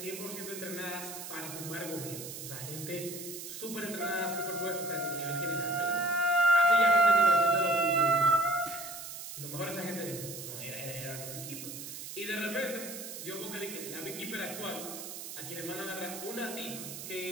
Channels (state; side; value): noise; right; hiss, 9 dB below the sound